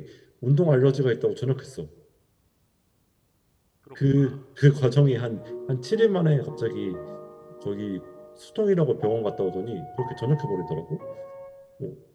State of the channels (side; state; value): both; identical; correlation 1.00